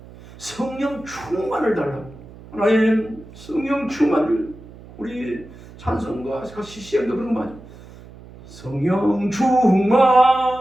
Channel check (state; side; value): noise; right; hum, 19 dB below the sound